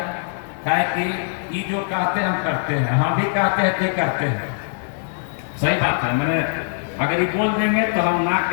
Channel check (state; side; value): silent; right; digital silence